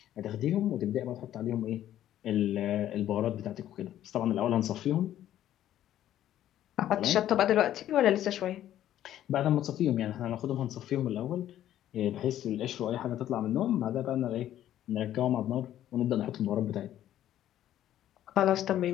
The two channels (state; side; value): quieter; right; 12.1 dB